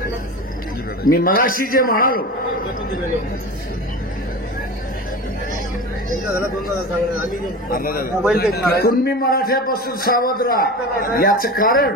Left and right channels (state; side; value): normal; both; correlation 0.30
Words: मी मगाशी जे म्हणालो कुणबी मराठ्यापासून सावध राहा, याचं कारण